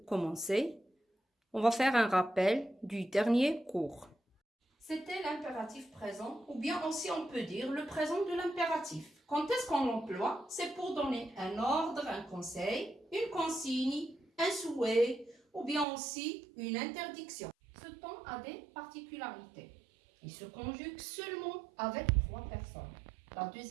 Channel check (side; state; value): left; drops out; at 15.9 s